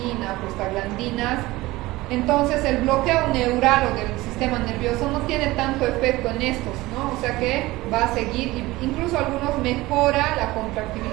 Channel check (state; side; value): quieter; left; 19.3 dB